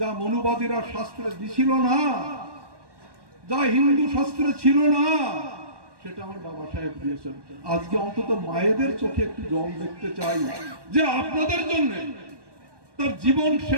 যা মনুবাদীরা শাস্ত্রে দিছিল না, যা হিন্দু শাস্ত্রে ছিল না, সেটা আমার বাবা সাহেব দিয়েছেন। আজকে অন্তত মায়েদের চোখে একটু জল দেখতে চাই যে আপনাদের জন্য তার জীবন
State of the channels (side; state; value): left; late; 1.2 ms